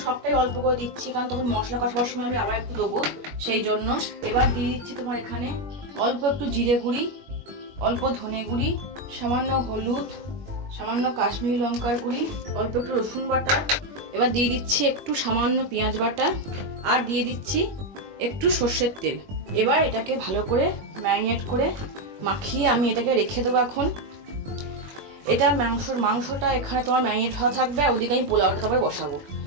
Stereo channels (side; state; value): left; late; 21 ms